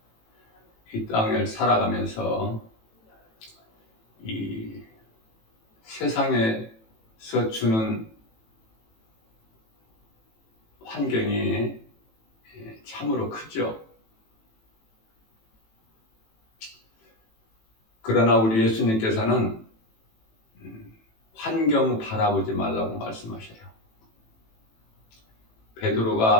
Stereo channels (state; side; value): late; right; 18 ms